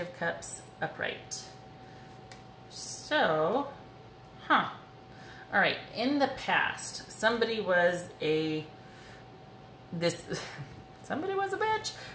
Cups upright. So, all right, in the past, somebody was a bitch,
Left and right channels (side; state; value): both; identical; correlation 1.00